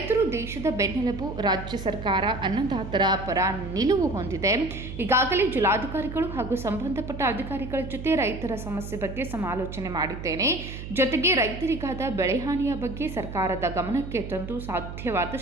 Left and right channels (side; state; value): right; noise; hum, 9 dB below the sound